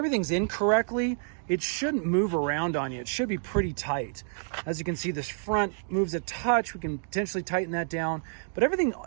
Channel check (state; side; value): silent; left; digital silence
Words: in correctly, it shouldn't move around on you. It should be pretty tight. As you can see, this front moves a touch. We can potentially tighten that down, but everything